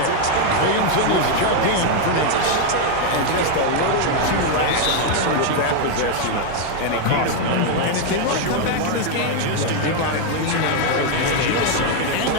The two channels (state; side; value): different; both; correlation 0.01